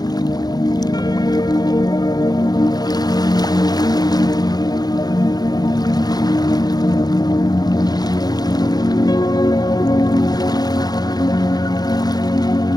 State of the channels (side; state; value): right; late; 0.19 ms